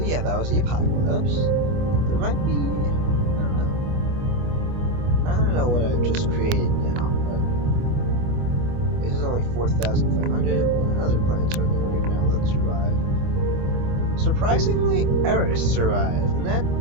that was the apocalypse. There might be, I don't know what I've just created now, but this is only 4,500. What other planets are there right now that survive? Surprisingly, Eris survived, and that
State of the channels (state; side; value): late; left; 25 ms